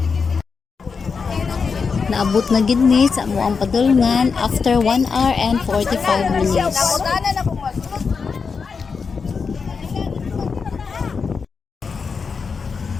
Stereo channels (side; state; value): right; quieter; 5.3 dB